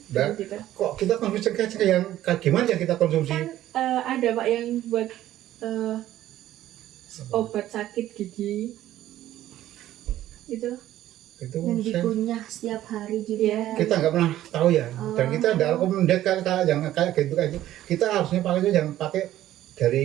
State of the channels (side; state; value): left; quieter; 13.4 dB